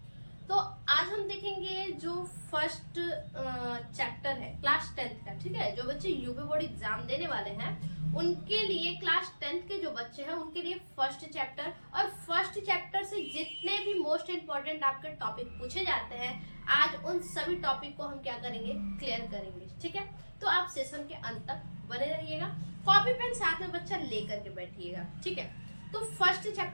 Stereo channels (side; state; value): both; inverted; correlation -1.00